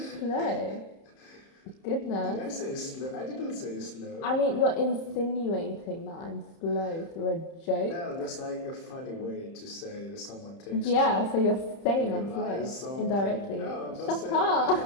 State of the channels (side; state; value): right; late; 30 ms